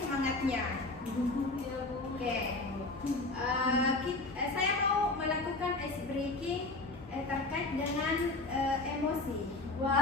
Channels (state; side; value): quieter; right; 3.1 dB